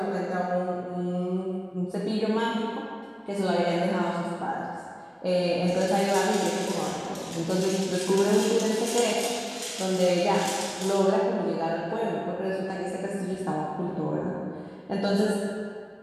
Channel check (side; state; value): both; identical; correlation 1.00